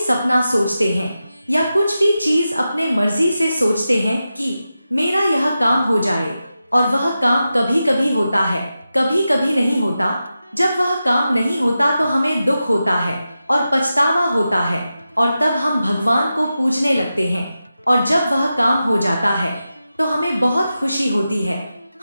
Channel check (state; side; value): inverted; both; correlation -0.91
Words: सोचते हैं या कुछ भी चीज अपने मर्जी से सोचते हैं कि मेरा यह काम हो जाए, और वह काम कभी कभी होता है, कभी कभी नहीं होता। जब वह काम नहीं होता तो हमें दुख होता है और पछतावा होता है, और तब हम भगवान को पूजने लगते हैं। और जब वह काम हो जाता है तो हमें बहुत खुशी होती है।